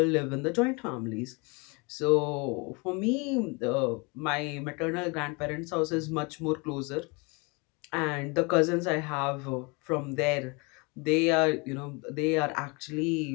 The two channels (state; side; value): quieter; right; 29.4 dB